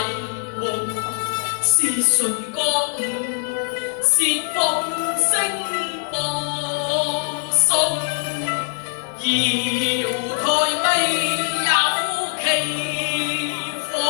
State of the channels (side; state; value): right; silent; digital silence